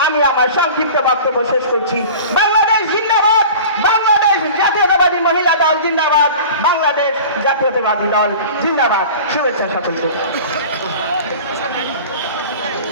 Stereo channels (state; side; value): inverted; both; correlation -0.39